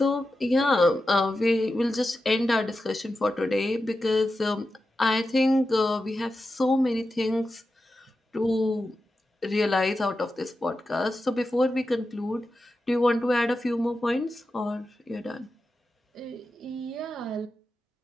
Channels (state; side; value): normal; both; correlation 0.91